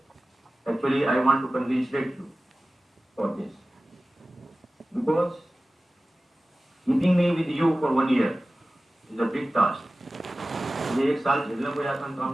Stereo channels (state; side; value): normal; both; correlation 0.96